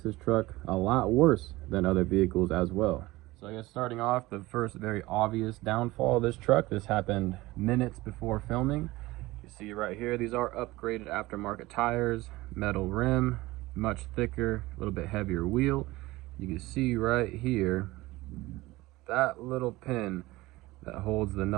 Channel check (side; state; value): left; quieter; 19.6 dB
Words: truck a lot worse than other vehicles as well. So I guess starting off, the first very obvious downfall of this truck, this happened minutes before filming. You see right here, these are upgraded aftermarket tires, metal rim, much thicker, a little bit heavier wheel. You can see right here, that little pin that holds the